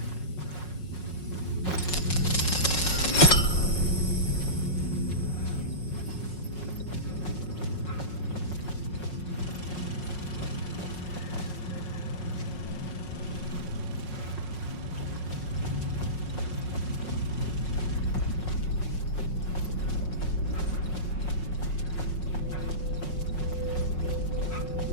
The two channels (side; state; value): right; late; 5.5 ms